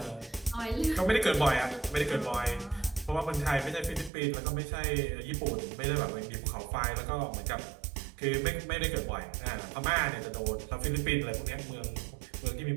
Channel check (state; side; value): drops out; left; at 4.1 s